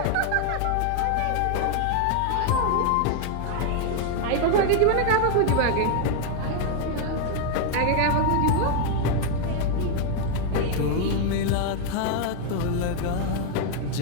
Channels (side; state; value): both; different; correlation 0.00